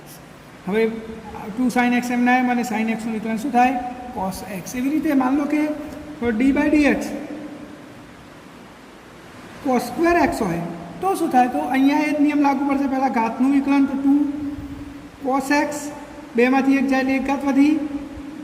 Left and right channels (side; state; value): both; identical; correlation 1.00